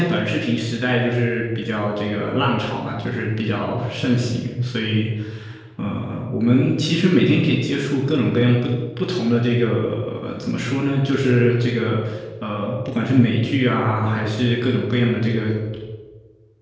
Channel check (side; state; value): both; identical; correlation 1.00